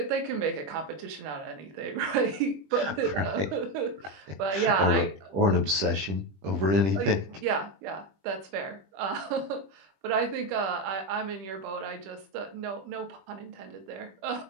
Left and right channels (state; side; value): late; left; 20 ms